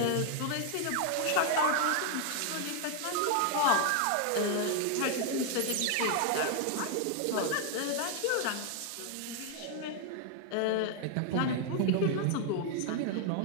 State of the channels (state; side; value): different; both; correlation 0.00